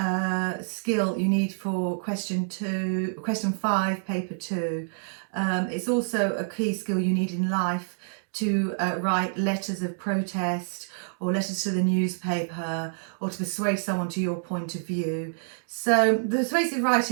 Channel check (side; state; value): left; silent; digital silence